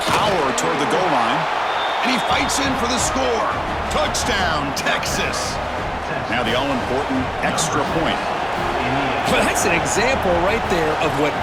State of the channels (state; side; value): identical; both; correlation 1.00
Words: power toward the goal line. And he fights in for the score. Touchdown, Texas. Now the all-important extra point. Well, that's an example right there of what